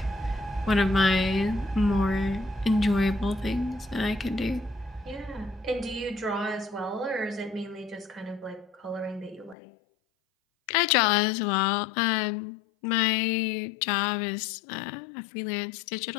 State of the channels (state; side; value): drops out; right; at 9.6 s